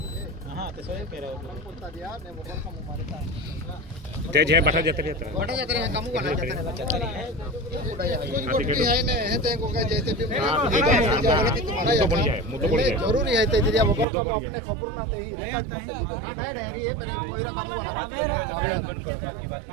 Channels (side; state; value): left; drops out; at 14.1 s